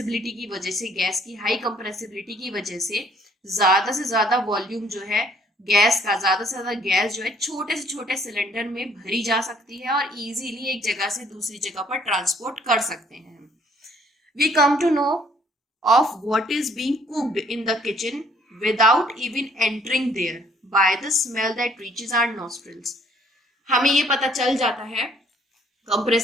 की वजह से, गैस की हाई कंप्रेसिबिलिटी की वजह से ज्यादा वॉल्यूम जो है गैस का, ज्यादा से ज्यादा गैस जो है छोटे से छोटे सिलेंडर में भरी जा सकती है और इजीली एक जगह से दूसरी जगह पर ट्रांसपोर्ट कर सकते हैं। We come to know of what is being cooked in the kitchen without even entering there by the smell that reaches our nostrils. हमें ये पता चल जाता है,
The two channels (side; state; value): both; normal; correlation 0.62